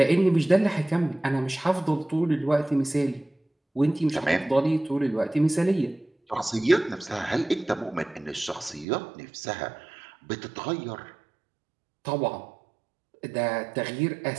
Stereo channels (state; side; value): drops out; left; at 8.8 s